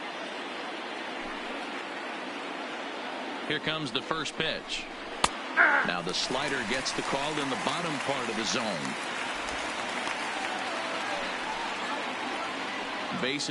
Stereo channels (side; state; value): both; identical; correlation 1.00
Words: Here comes the first pitch. Now the slider gets the call in the bottom part of the zone.